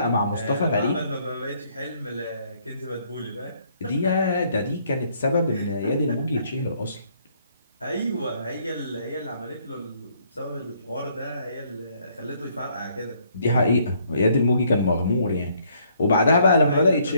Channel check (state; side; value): inverted; both; correlation -0.66